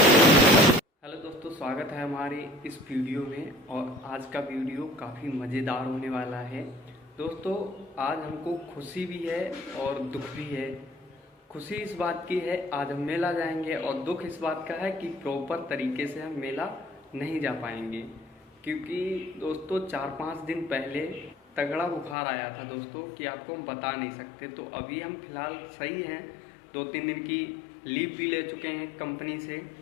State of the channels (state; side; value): drops out; right; at 22.2 s